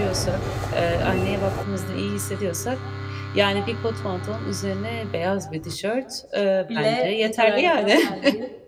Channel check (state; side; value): identical; both; correlation 1.00